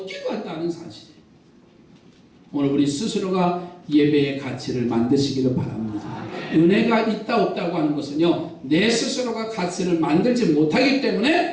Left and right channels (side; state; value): both; identical; correlation 1.00